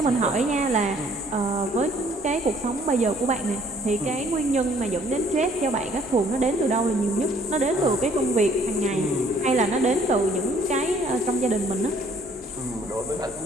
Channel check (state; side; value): normal; both; correlation 0.60